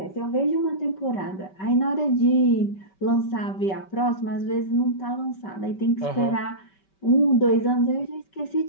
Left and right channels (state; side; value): late; right; 5.2 ms